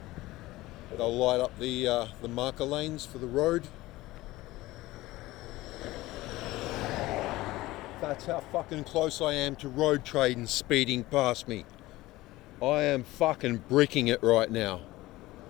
They'll light up the marker lanes for the road. That's how fucking close I am to road trains speeding past me. I am fucking bricking it right now.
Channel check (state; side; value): quieter; right; 18.3 dB